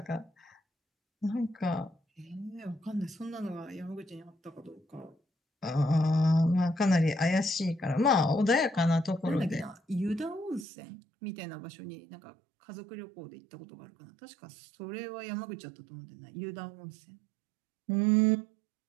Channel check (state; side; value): drops out; left; at 10.7 s